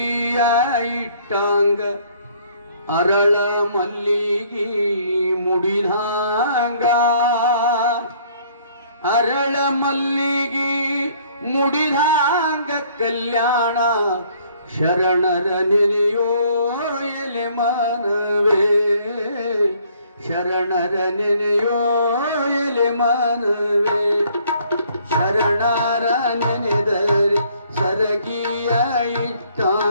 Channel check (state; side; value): inverted; both; correlation -0.62